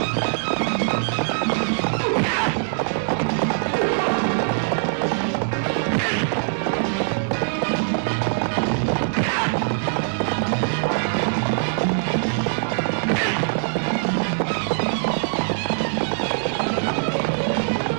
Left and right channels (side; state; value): left; silent; 64 dB below the other